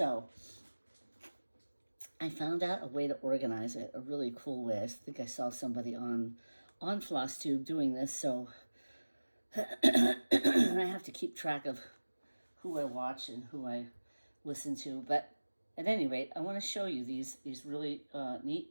I found out a way to organize it, a really cool way. I think I saw somebody on FlossTube doing this, so I have to keep track of who I watch and who I listen to. But at any rate, I want to show you these really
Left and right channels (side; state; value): both; inverted; correlation -1.00